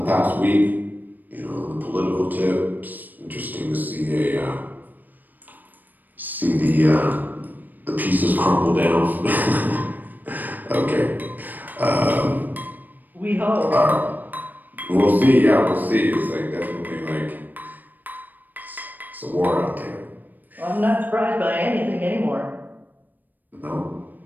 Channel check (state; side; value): late; left; 0.087 ms